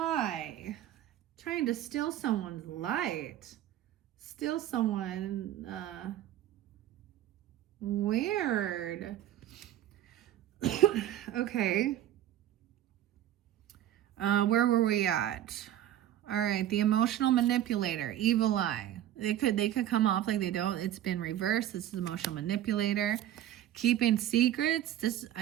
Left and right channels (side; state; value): left; quieter; 12.2 dB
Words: Trying to steal someone's light. Steal someone, weird. Okay. Where were we at? All right, the emotional manipulator, evil eye. They could come off like they don't. It's been reversed. This is emotional manipulator. Keeping secrets.